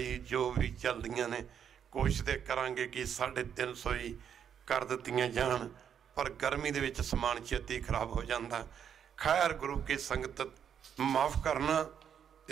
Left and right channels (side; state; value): left; quieter; 8.3 dB